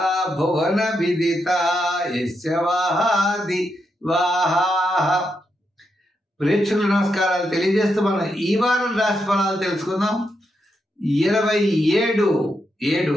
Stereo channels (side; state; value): both; normal; correlation 0.83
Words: భువన విదిత యస్య వాహాది వాహాః. ప్రేక్షకుల నమస్కారాలు తెలియజేస్తూ మనం ఈ వారం రాశి ఫలాలు తెలుసుకుందాం.